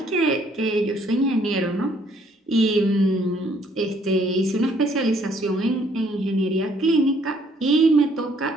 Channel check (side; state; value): both; normal; correlation 0.64